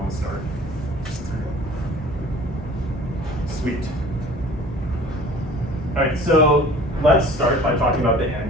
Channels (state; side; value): normal; both; correlation 0.47